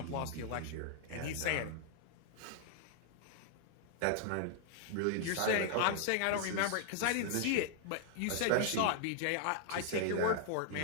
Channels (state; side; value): different; both; correlation 0.00